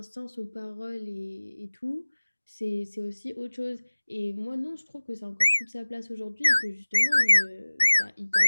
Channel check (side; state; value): both; inverted; correlation -1.00